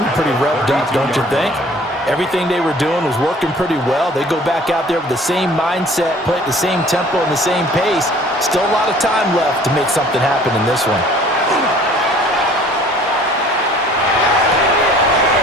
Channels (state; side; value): normal; both; correlation 0.52